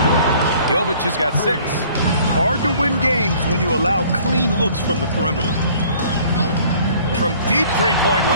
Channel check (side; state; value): both; inverted; correlation -0.55